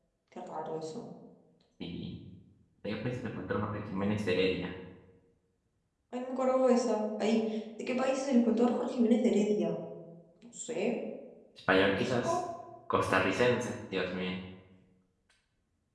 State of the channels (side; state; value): both; identical; correlation 1.00